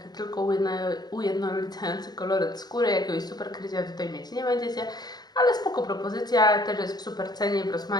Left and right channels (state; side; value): late; right; 0.19 ms